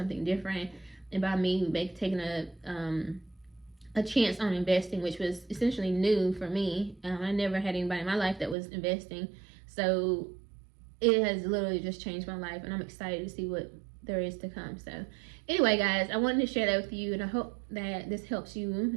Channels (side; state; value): left; drops out; at 8.6 s